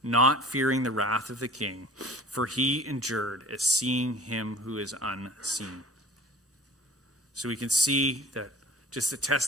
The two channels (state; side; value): normal; both; correlation 0.44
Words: not fearing the wrath of the king, for he endured as seeing him who is unseen. So we can see that just the